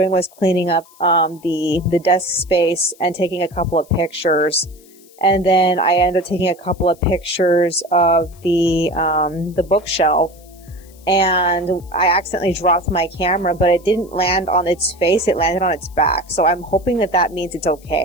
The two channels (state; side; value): noise; left; hiss, 27 dB below the sound